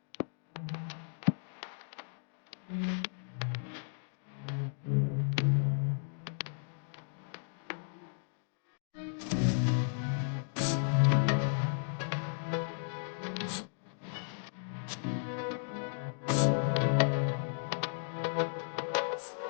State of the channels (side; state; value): right; silent; digital silence